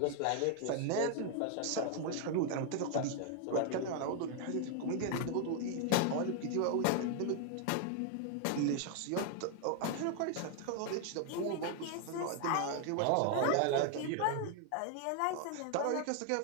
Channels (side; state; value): both; different; correlation 0.00